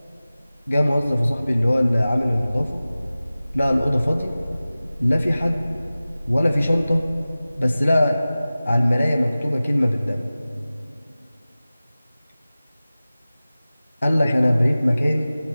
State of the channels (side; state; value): both; inverted; correlation -0.97